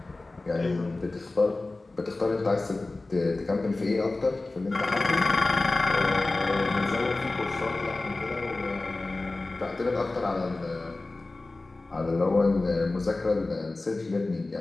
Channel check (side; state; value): right; quieter; 3.1 dB